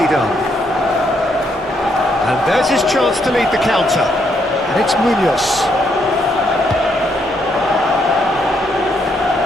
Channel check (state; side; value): normal; both; correlation 0.74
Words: done. And there's his chance to lead the counter. And it's Munoz.